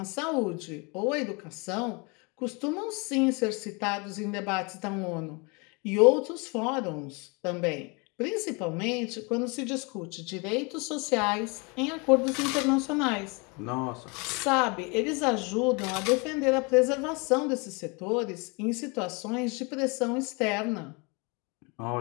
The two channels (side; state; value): right; quieter; 30.3 dB